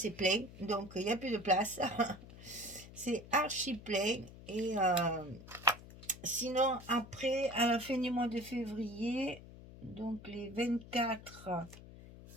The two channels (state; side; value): noise; left; hum, 17 dB below the sound